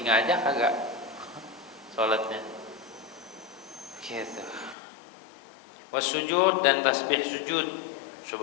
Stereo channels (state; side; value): drops out; right; at 4.8 s